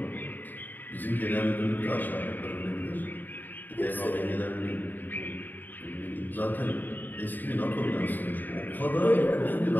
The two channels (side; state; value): right; late; 0.089 ms